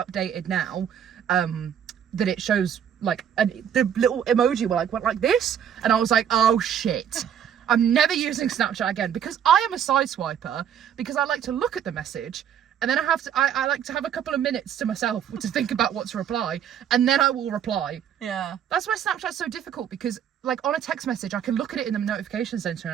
now, that it shows like the little emoji went like this, and I was like, oh shit. I'm never using Snapchat again, because I am a side swiper, because I like to look at the message, and then I like to have a couple of minutes to myself to think about what to reply, and then I will reply. Yeah. That's why Snapchat's so difficult, because like on a text message, I can look at it in the notification center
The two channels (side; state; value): left; quieter; 9.0 dB